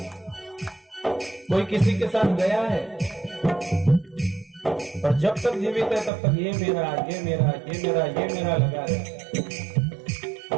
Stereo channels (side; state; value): left; drops out; at 6.1 s